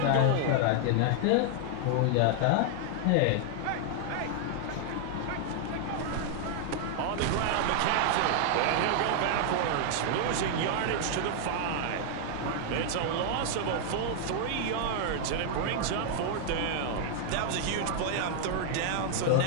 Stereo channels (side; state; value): both; different; correlation 0.00